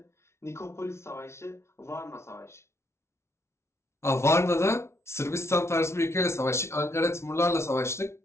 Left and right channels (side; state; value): right; late; 0.13 ms